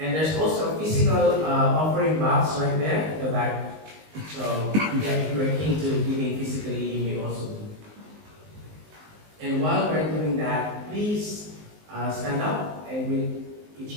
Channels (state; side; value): late; left; 19 ms